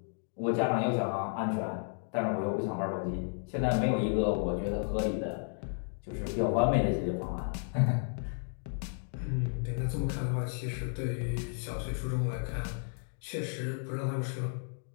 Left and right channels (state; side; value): silent; right; 56 dB below the other